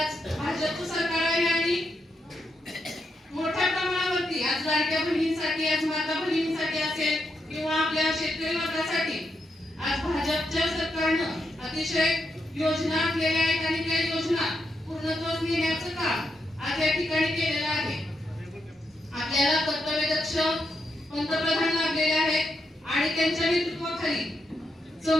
भाजपचं सरकार आहे आणि मोठ्या प्रमाणावरती आज लाडक्या बहिणींसाठी, आज माता बहिणींसाठी असेल किंवा आपल्या शेतकरी वर्गासाठी आज भाजपच्या सरकारनं अतिशय योजना आखलेल्या आहेत आणि त्या योजना पूर्णत्वास नेण्याचं काम आज या ठिकाणी केलेलं आहे. आपल्याला कर्तव्यदक्ष पंतप्रधान लाभलेले आहेत आणि त्यांच्या नेतृत्वाखाली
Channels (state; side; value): normal; both; correlation 0.82